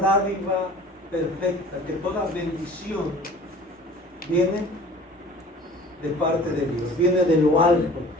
perfecta, que toda bendición viene de parte de Dios, viene de lo alto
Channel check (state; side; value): normal; both; correlation 0.46